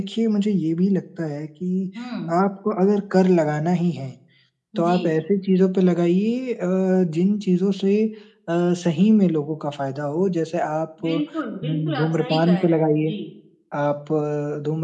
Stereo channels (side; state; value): both; identical; correlation 1.00